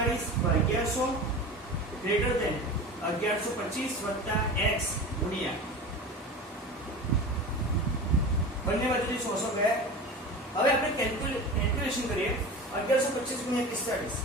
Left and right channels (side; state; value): both; normal; correlation 0.32